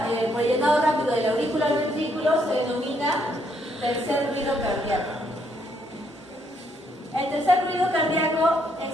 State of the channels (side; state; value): both; normal; correlation 0.72